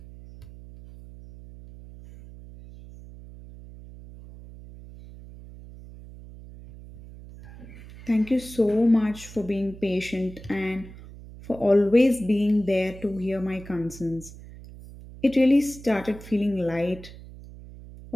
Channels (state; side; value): noise; right; hum, 17 dB below the sound